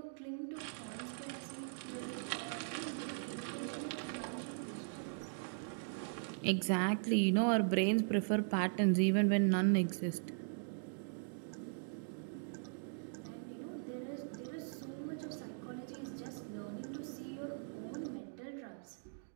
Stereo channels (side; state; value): left; silent; digital silence